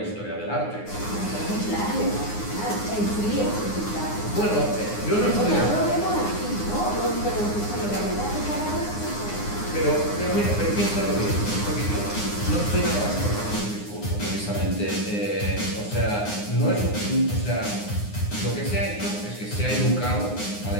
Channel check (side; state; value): right; late; 9.7 ms